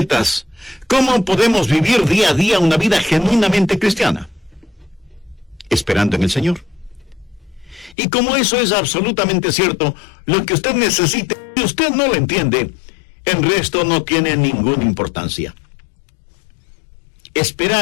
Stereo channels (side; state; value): right; drops out; at 8.0 s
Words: ¿Cómo podemos vivir día a día una vida genuinamente cristiana? Esperando en el Señor. Y como eso es absolutamente cierto, lo que usted necesita, y usted no lo entiende, el resto no tiene ninguna importancia.